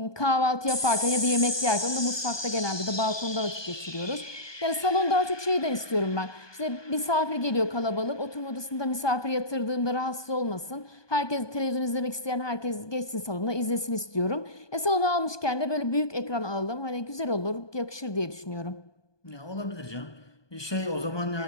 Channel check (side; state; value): right; late; 1.2 ms